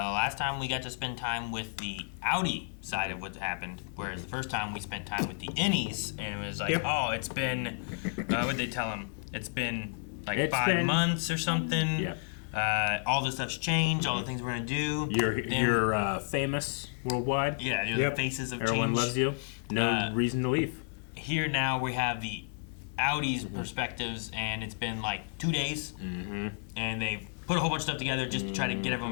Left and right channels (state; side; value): silent; right; 56 dB below the other